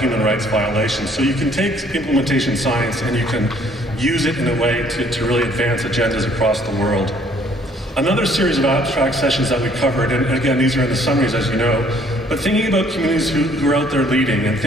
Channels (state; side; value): normal; both; correlation 0.61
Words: rights violations. So you can take implementation science and you can use it in a way to really advance agendas across the world. Another series of abstract sessions that we covered, and again, these are in the summaries, as you know, but thinking about communities who are out there leading, and